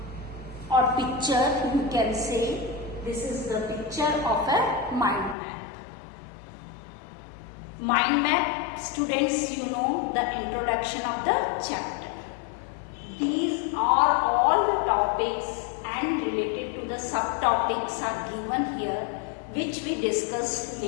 or picture you can say. This is the picture of a mind map. Mind map, students, you know the introduction of the chapter. These are all the topics and related to the subtopics are given here, which we discuss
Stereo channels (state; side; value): drops out; right; at 5.4 s